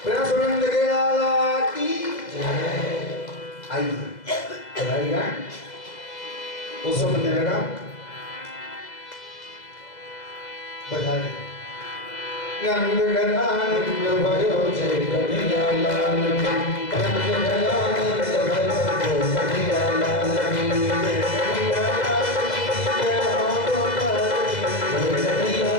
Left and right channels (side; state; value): right; late; 2.0 ms